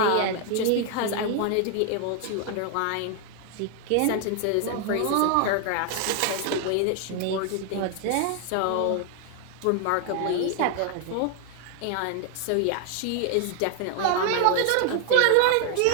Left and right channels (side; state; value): both; different; correlation 0.00